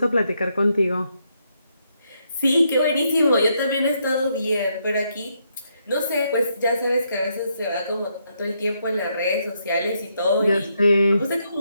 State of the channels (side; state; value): both; inverted; correlation -0.77